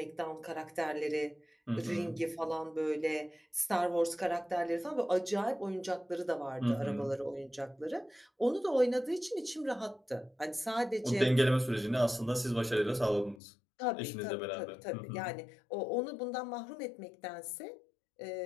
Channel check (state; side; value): drops out; right; at 13.4 s